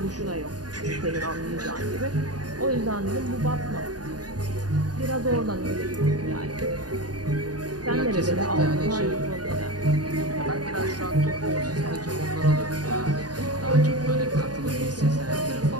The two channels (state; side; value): late; left; 0.69 ms